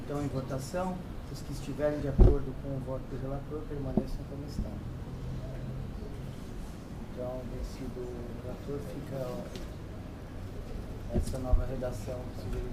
Então, em votação, os que estiverem de acordo com o voto do relator permaneçam como estão. Então, vencido o relator, fica essa nova redação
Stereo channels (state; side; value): identical; both; correlation 1.00